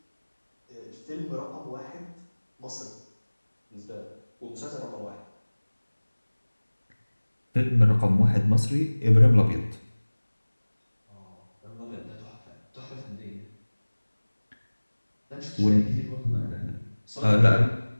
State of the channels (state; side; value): inverted; both; correlation -1.00